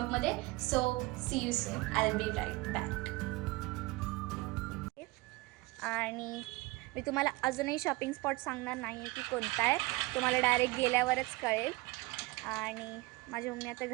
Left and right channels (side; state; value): left; quieter; 22.7 dB